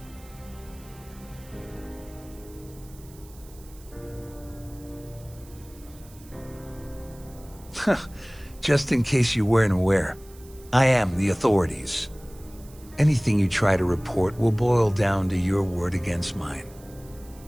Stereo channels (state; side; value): noise; right; hiss, 24 dB below the sound